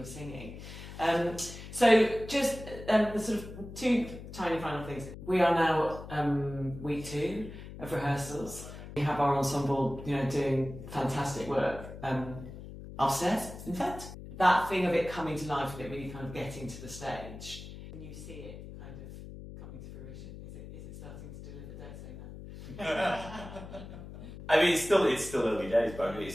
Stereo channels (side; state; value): left; noise; hum, 12 dB below the sound